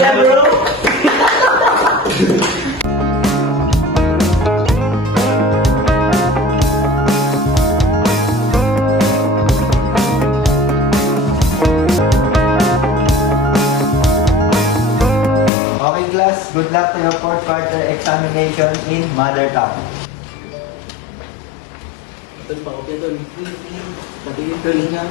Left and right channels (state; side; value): drops out; right; at 15.5 s